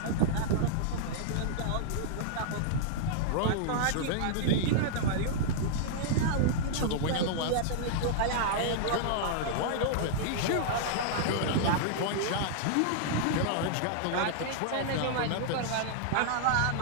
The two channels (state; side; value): different; both; correlation -0.01